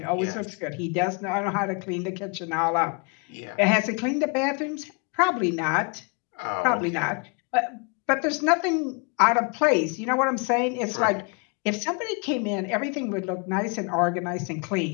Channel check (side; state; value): right; quieter; 33.2 dB